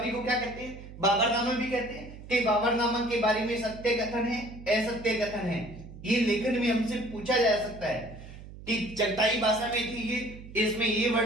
को क्या कहते हैं? बाबरनामा भी कहते हैं। कि बाबरनामा के बारे में सत्य कथन है, असत्य कथन है। ये लेखन में हमसे पूछा जा सकता है कि चगताई भाषा में थी ये, इसमें ये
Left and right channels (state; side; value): noise; right; hum, 15 dB below the sound